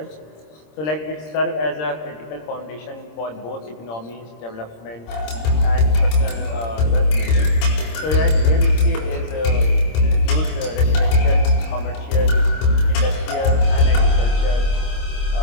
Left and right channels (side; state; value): right; late; 26 ms